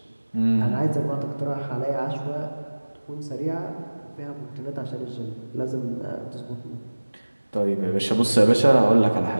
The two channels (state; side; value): inverted; both; correlation -1.00